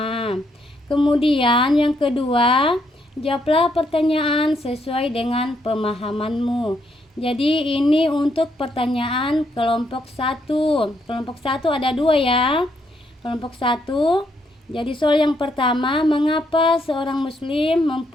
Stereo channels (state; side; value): normal; both; correlation 0.75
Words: Kemudian yang kedua, jawablah pertanyaan sesuai dengan pemahamanmu. Jadi ini untuk pertanyaan kelompok 1. Kelompok 1 ada 2 ya. Kelompok 1. Jadi soal yang pertama, mengapa seorang muslim